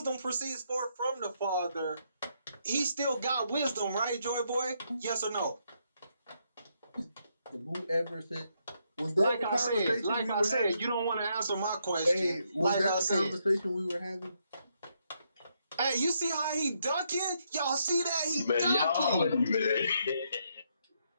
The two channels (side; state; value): both; inverted; correlation -0.76